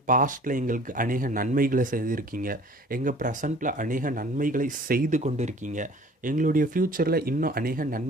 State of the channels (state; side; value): normal; both; correlation 0.49